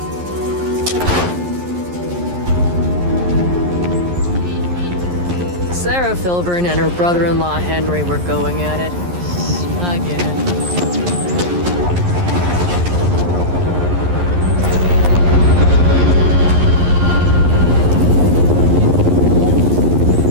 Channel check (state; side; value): late; left; 11 ms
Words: Sarah Filburn and her brother-in-law Henry were going at it. Again.